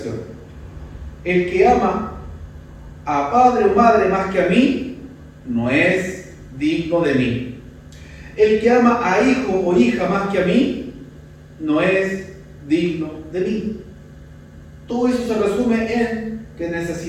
El que ama a padre o madre más que a mí, no es digno de mí. El que ama a hijo o hija más que a mí, no es digno de mí. Todo eso se resume en que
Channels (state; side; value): identical; both; correlation 1.00